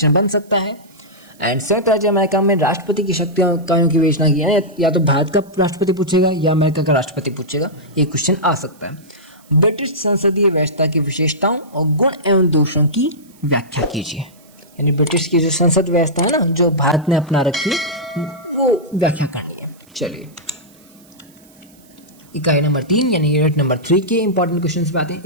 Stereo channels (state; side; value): noise; right; hiss, 29 dB below the sound